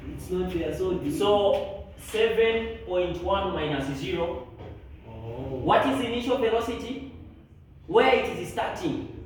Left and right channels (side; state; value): both; identical; correlation 1.00